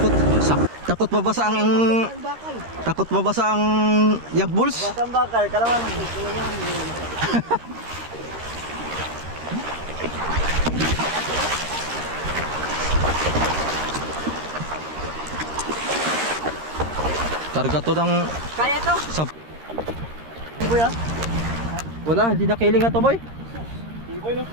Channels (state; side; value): late; left; 13 ms